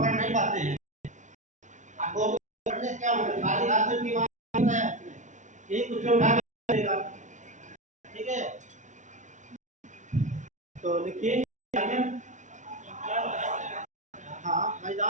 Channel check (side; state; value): left; late; 0.36 ms